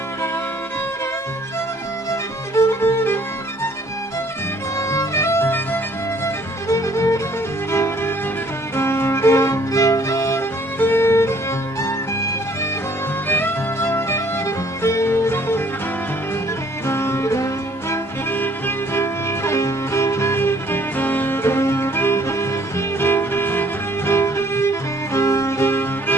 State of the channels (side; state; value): both; normal; correlation 0.60